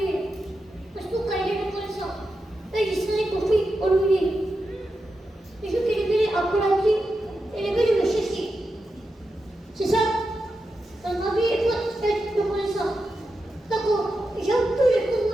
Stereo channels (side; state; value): both; normal; correlation 0.89